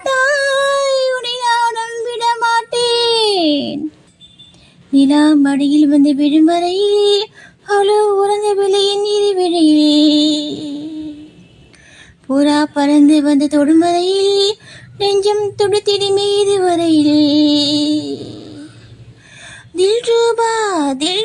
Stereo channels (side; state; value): both; identical; correlation 1.00